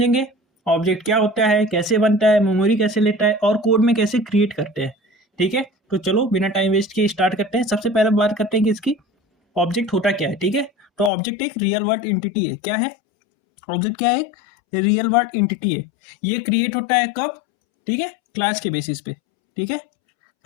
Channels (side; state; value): right; drops out; at 11.1 s